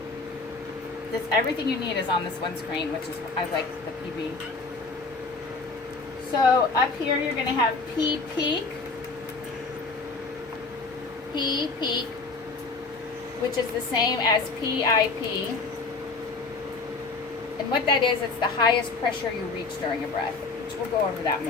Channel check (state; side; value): quieter; right; 4.0 dB